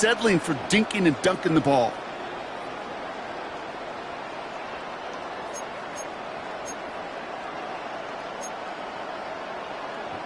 for dinking and dunking the ball.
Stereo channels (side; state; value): both; identical; correlation 1.00